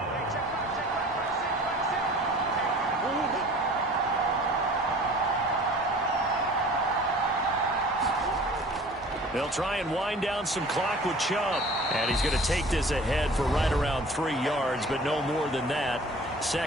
They'll try and wind down some clock with Chubb. And he's going to take this ahead for right around 3 yards, but no more than that.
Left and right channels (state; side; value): normal; both; correlation 0.46